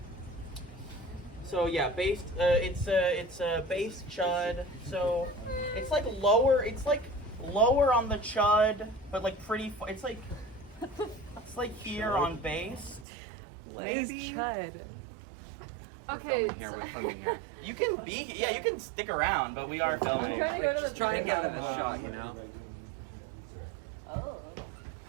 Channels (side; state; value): left; drops out; at 13.1 s